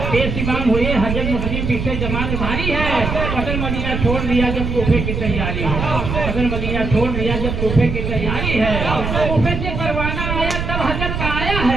बेसीमान हुए हजरत मुस्लिम पीछे जमात भारी है। अगर मदीना छोड़ दिया जब कूफे की तैयारी है, अगर मदीना छोड़ दिया जब कूफे की तैयारी है। कूफे से परवाना आया तब हजरत का आया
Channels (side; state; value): right; noise; rumble, 3 dB below the sound